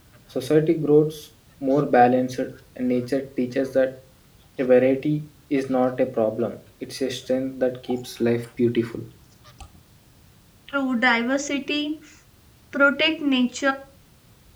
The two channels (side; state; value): both; identical; correlation 1.00